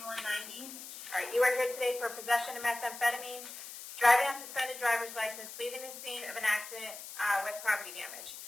All right, you are here today for possession of methamphetamine, driving on suspended driver's license, leaving the scene of an accident with property damage.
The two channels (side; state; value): left; noise; hiss, 12 dB below the sound